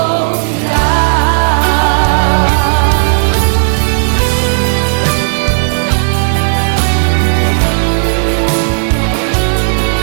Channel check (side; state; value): left; silent; 71 dB below the other